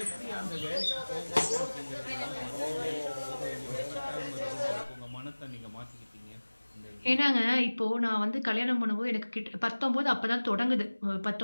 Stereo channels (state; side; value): inverted; both; correlation -1.00